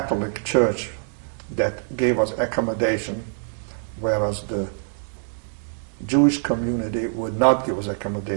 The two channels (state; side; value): silent; left; digital silence